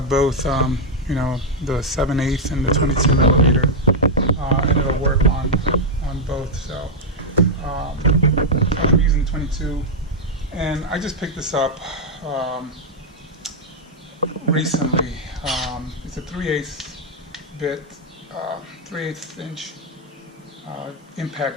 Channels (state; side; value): normal; both; correlation -0.02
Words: both. The 7/8 and the 22 millimeter. And it'll work on both. So I'm using 22, and I just picked this up recently. It's a 3/8 bit, 3/8 inch